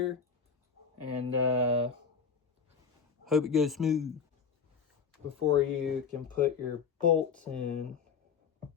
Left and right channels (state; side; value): quieter; right; 6.1 dB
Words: and hope it goes smooth. Before you can put your bolts in,